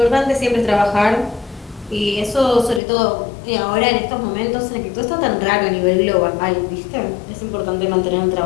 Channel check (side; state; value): right; drops out; at 2.8 s